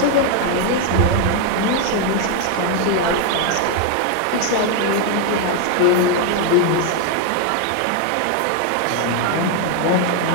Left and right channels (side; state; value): both; different; correlation 0.01